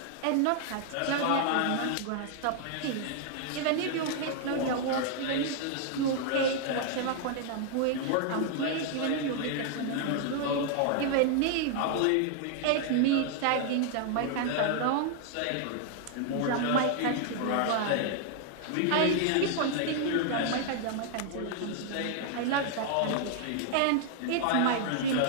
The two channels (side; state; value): both; different; correlation 0.00